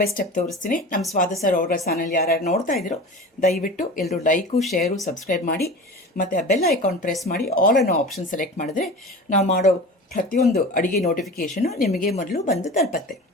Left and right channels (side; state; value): both; normal; correlation 0.34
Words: ಸ್ಟೆಪ್ ತೋರಿಸ್ತೀನಿ. ನಮ್ಮ ಸ್ವಾದ ಸರ್ ಅವರ ಚಾನಲ್ ಯಾರ್ಯಾರು ನೋಡ್ತಾ ಇದ್ದೀರೋ ದಯವಿಟ್ಟು ಎಲ್ಲರೂ ಲೈಕು, ಶೇರು, ಸಬ್ಸ್ಕ್ರೈಬ್ ಮಾಡಿ ಮತ್ತು ಆ ಬೆಲ್ ಐಕಾನ್ ಪ್ರೆಸ್ ಮಾಡಿ ಆಲ್ ಅನ್ನೋ ಆಪ್ಷನ್ ಸೆಲೆಕ್ಟ್ ಮಾಡಿದ್ರೆ ನಾವು ಮಾಡೋ ಪ್ರತಿಯೊಂದು ಅಡುಗೆ ನೋಟಿಫಿಕೇಷನು ನಿಮಗೆ ಮೊದಲು ಬಂದು ತಲುಪತ್ತೆ.